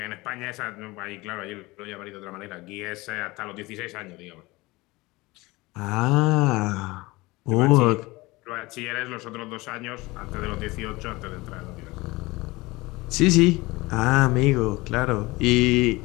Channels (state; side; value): quieter; right; 21.8 dB